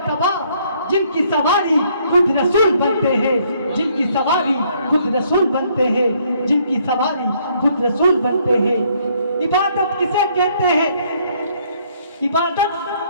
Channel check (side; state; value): both; inverted; correlation -0.67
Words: जिनकी सवारी खुद रसूल बनते हैं, जिनकी सवारी खुद रसूल बनते हैं, जिनकी सवारी खुद रसूल बनते हैं। इबादत किसे कहते हैं, इबादत